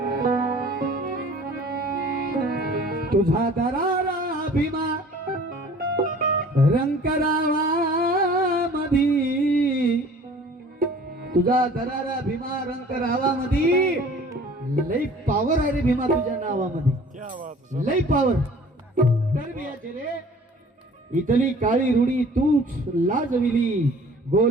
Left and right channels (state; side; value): normal; both; correlation 0.49